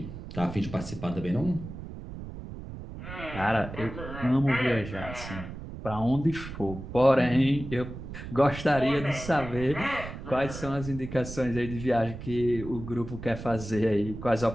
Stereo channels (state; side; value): noise; right; rumble, 10 dB below the sound